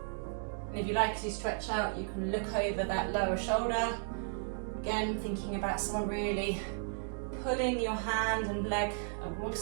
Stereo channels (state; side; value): silent; left; digital silence